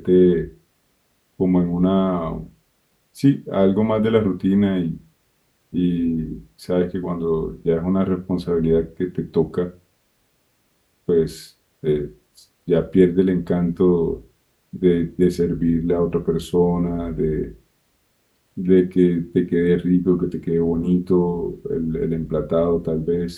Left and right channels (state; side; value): identical; both; correlation 1.00